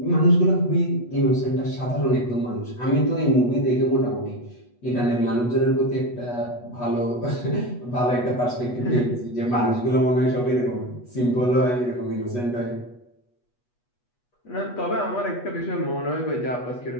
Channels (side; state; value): right; late; 8.2 ms